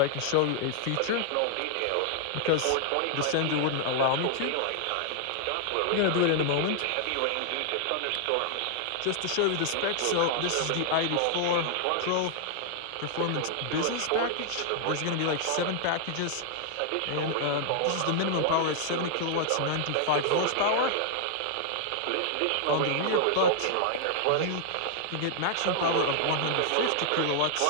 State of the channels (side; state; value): both; different; correlation 0.00